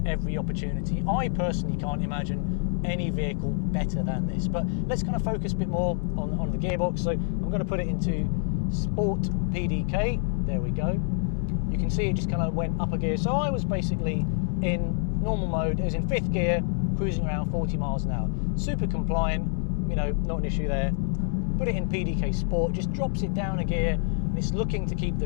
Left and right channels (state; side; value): silent; right; 60 dB below the other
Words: every opportunity. I personally can't imagine any vehicle better than this, but let's kind of focus a bit more on the gearbox. So I'm going to put it into Sport PDK. There we go. You can see it just kind of went up a gear. So I was basically in normal mode. It was in 5th gear, cruising around 40 miles an hour. Super compliant, you know, not an issue there. Put it in PDK Sport, just drops it down a gear. It's looking to keep